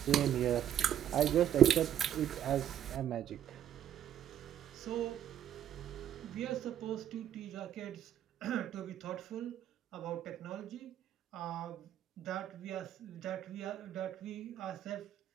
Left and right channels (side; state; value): left; quieter; 10.4 dB